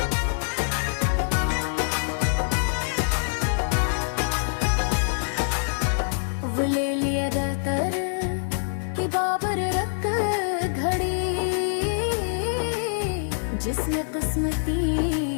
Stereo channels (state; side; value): silent; right; digital silence